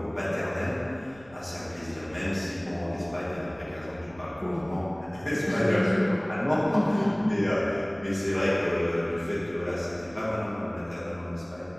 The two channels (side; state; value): left; noise; rumble, 25 dB below the sound